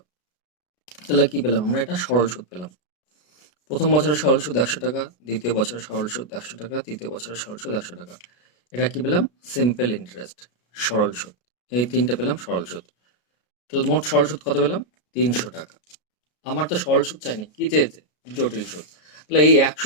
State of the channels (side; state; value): right; late; 33 ms